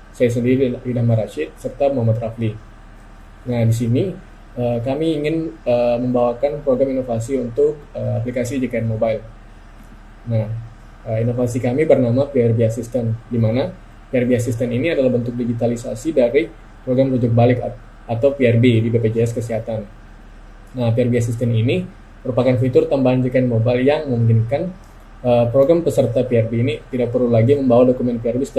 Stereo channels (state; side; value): identical; both; correlation 1.00